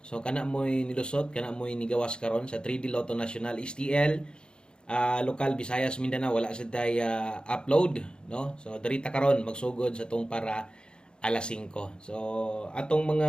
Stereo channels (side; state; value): right; late; 0.049 ms